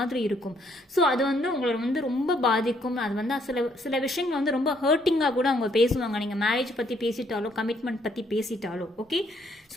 இருக்கும். ஸோ அது வந்து உங்களை வந்து ரொம்ப பாதிக்கும். அது வந்து சில விஷயங்கள் வந்து ரொம்ப ஹர்ட்டிங்காக கூட அவங்க பேசுவாங்க, நீங்கள் மேரேஜ் பற்றி பேசிட்டாலோ கமிட்மெண்ட் பற்றி பேசிட்டாலோ. ஓகே,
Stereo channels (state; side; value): normal; both; correlation 0.68